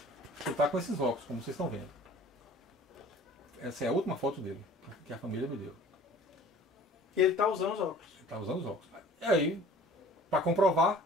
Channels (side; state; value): both; normal; correlation 0.48